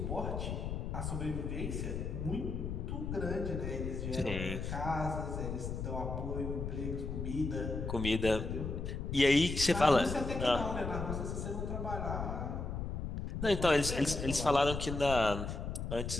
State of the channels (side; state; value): left; noise; rumble, 4 dB below the sound